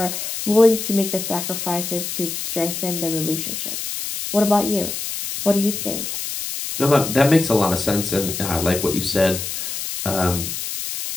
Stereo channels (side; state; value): left; noise; hiss, 5 dB below the sound